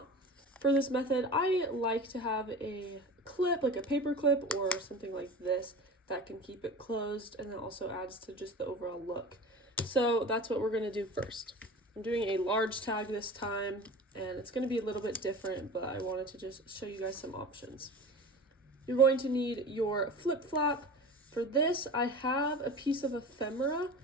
For this method, I like to have a clip, like a paper clip or something like this, that can keep it closed, and then also adds to just the overall look. So that's what we're going to do first. I'm doing a large tag this time, and it's going to be a little bit different, but I wanted to just show you guys some options. You're going to need your flip flap. For this, I have a piece of ephemera.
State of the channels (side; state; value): both; normal; correlation 0.35